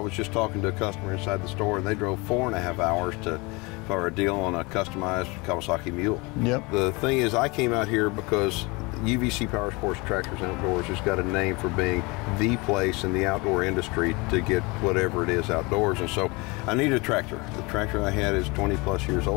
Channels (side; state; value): right; quieter; 26.2 dB